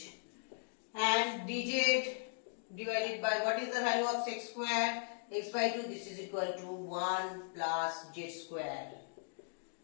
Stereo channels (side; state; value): right; silent; digital silence